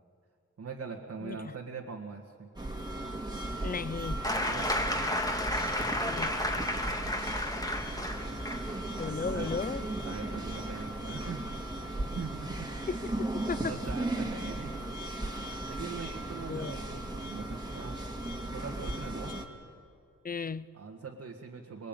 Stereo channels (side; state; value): both; normal; correlation 0.42